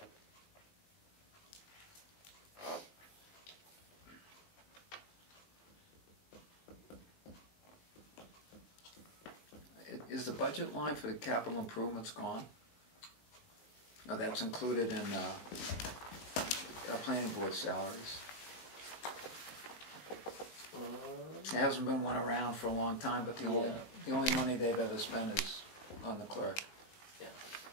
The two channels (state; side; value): late; right; 19 ms